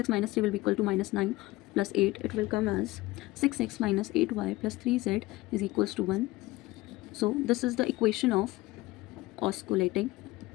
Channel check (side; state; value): right; quieter; 19.4 dB